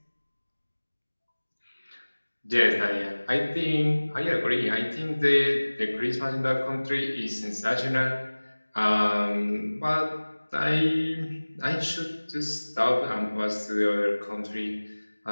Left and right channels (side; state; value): both; inverted; correlation -1.00